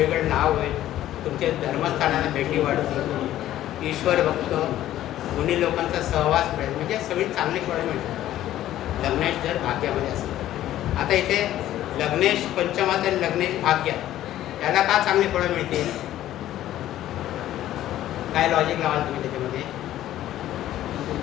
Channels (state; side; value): quieter; right; 13.2 dB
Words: नाव होईल, तुमच्या धर्मस्थानाला भेटी वाढतील, ईश्वर भक्त मुनी लोकांचा सहवास मिळेल. म्हणजे सगळी चांगली फळं मिळतात लग्नेश जर भाग्यामध्ये असेल. आता इथे लग्नेश पंचमात आणि लग्नेश भाग्यात याला का चांगली फळं मिळतील? काय लॉजिक लावाल तुम्ही त्याच्यामध्ये?